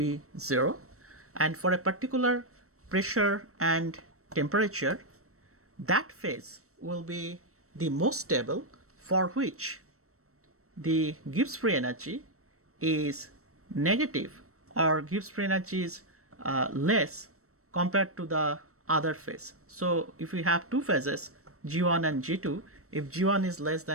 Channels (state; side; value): late; left; 0.64 ms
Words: 0, and for a particular pressure and temperature, that phase will be the most stable, for which the Gibbs free energy is negative, or Gibbs free energy is less compared to the other phase. So if we have two phases, G1 and G2, if G1 is less